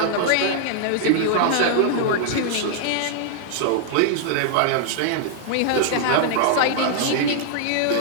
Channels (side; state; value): both; different; correlation 0.00